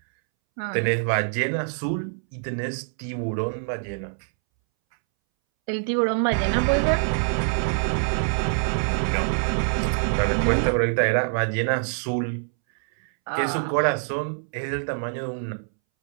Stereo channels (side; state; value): left; silent; 62 dB below the other